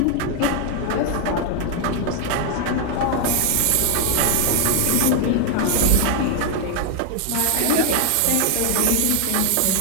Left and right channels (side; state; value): both; different; correlation 0.00